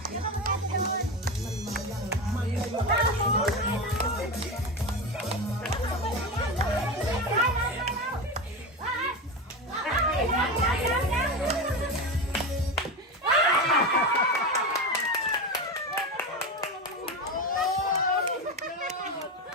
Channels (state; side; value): normal; both; correlation 0.20